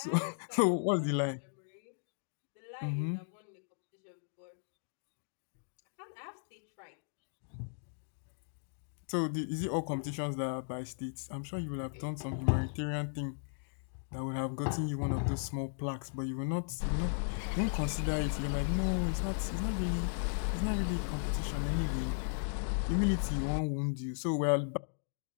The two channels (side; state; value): right; silent; digital silence